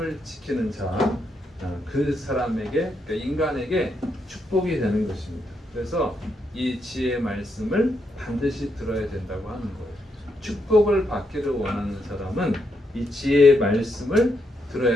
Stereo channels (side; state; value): both; normal; correlation 0.80